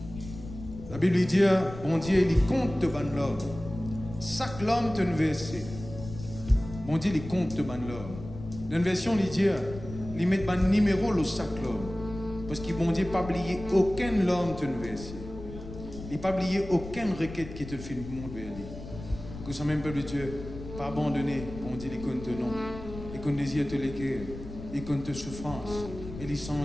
La Bible dit, bon Dieu, il compte de ban l'homme. Chaque homme te versé. Bon Dieu, il compte de ban l'homme. Dans une version, il dit, il met ban numéro le chaque homme. Parce que bon Dieu n'a pas oublié aucun homme te versé. Il n'a pas oublié aucune requête qui te fait le monde vers lui. Que ce même peuple de Dieu, pas abandonné, bon Dieu, il compte non. Il compte désir te l'écrire. Il compte tes souffrances. Et il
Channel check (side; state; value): left; noise; rumble, 12 dB below the sound